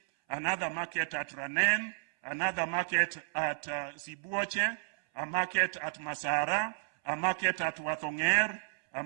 another market at Ranen, another market at Sibuoche, a market at Masara, a market at Wathonger, a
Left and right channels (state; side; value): silent; left; 56 dB below the other